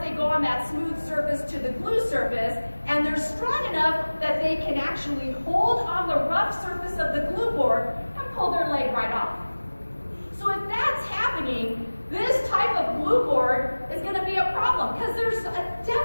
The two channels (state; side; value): inverted; both; correlation -1.00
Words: they go on that smooth surface to the glue surface, and they're strong enough that they can actually hold on the rough surface of the glue board and pull their leg right off. So if that's happening, this type of glue board is going to be a problem, because there's a